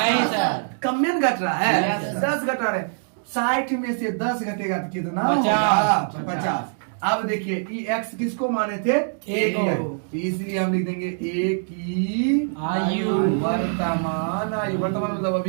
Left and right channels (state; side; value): silent; left; digital silence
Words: सर। कम में घट रहा है, Yes, sir. 10 घटा रहे। 60 में से 10 घटेगा तो कितना 50। होगा? 50। अब देखिए ये x किसको माने थे? एक को। तो इसलिए हम लिख देंगे a की आयु। वर्तमान आयु, वर्तमान मतलब